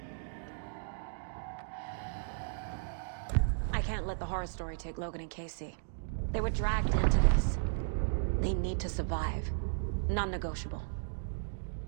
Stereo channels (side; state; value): left; silent; digital silence